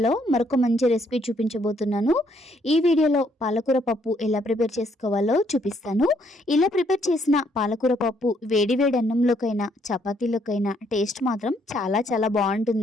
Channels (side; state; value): both; normal; correlation 0.69